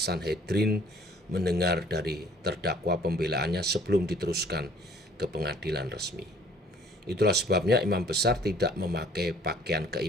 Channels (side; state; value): both; normal; correlation 0.56